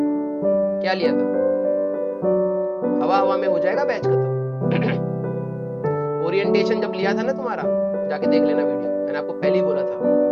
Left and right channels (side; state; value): both; identical; correlation 1.00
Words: क्या लिया था? हवा हवा में हो जाएगा बैच खत्म। ओरिएंटेशन जब लिया था ना तुम्हारा, जाके देख लेना वीडियो, मैंने आपको पहले ही बोला था,